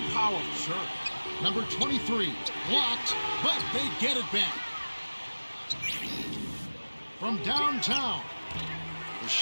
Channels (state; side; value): inverted; both; correlation -1.00